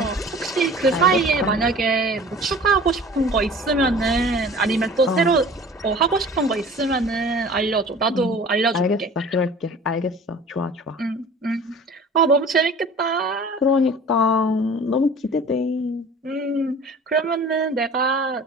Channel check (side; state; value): both; normal; correlation 0.44